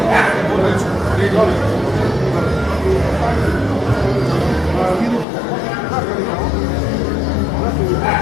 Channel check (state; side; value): drops out; right; at 5.2 s